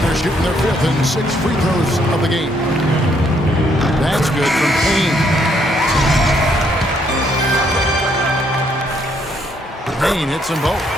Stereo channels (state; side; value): normal; both; correlation 0.71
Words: shooting their 5th and 6th free throws of the game. That's good from Payne. Payne hits them both.